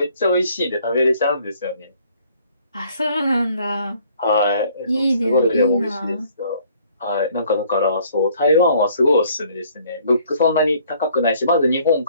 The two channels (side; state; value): both; inverted; correlation -0.60